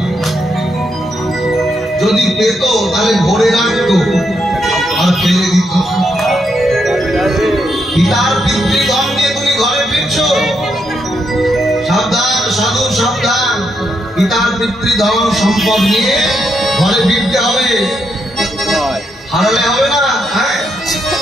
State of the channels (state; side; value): normal; both; correlation 0.79